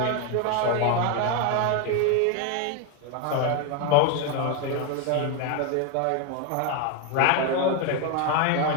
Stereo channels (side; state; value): both; different; correlation 0.02